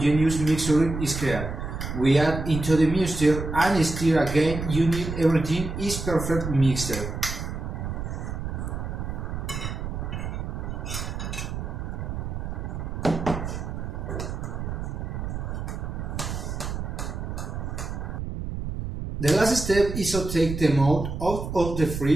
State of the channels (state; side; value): noise; right; rumble, 5 dB below the sound